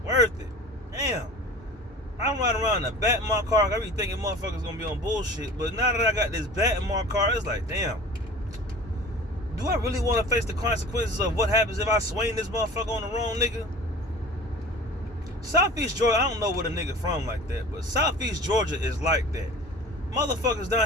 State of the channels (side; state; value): both; normal; correlation 0.41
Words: worth it. Damn. I'm riding around in a bat in my car. I be thinking motherfuckers gonna be on bullshit. But now that I got this bat in my car, it's like, damn. Do I really want to face the consequences of what happens if I swing this motherfucker on the wrong nigga? Southeast Georgia, I don't know where the nigga from like that, but Southeast Georgia is like that. Motherfuckers